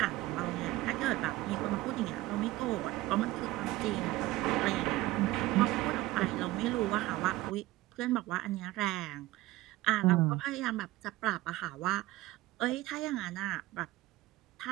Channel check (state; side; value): quieter; left; 17.5 dB